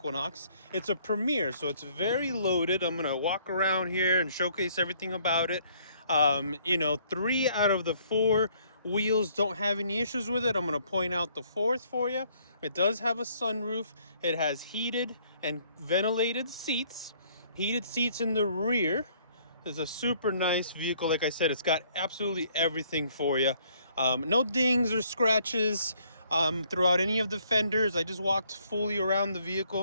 It's a Premier, so it's very loaded. I'm going to walk around here and showcase everything about it. 3 out of the 4 wheels don't have any issues with it. I'm going to point out the 4th for you. It does have a sunroof. It has heated and ventilated seats. Heated seats in the rear. It's a super nice vehicle. Like I said, it's got absolutely everything for you. No dings or scratches throughout any of the fenders. I just walked fully around the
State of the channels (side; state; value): both; inverted; correlation -0.64